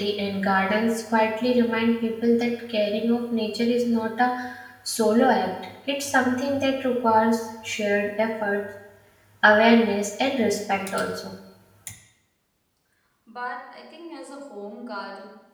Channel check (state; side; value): identical; both; correlation 1.00